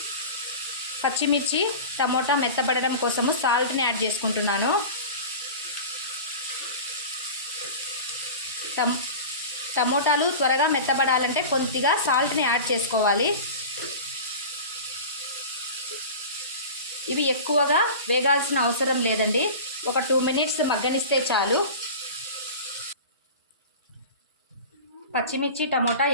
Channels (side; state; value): both; inverted; correlation -0.33